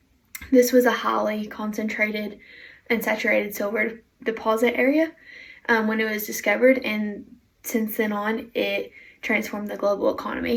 This was a highly concentrated and saturated silver deposit area when it was discovered, and since then on, it transformed the global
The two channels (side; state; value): both; identical; correlation 1.00